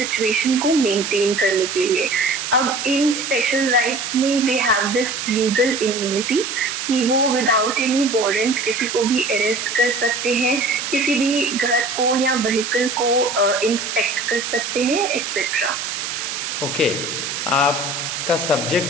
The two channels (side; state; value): right; noise; hiss, 4 dB below the sound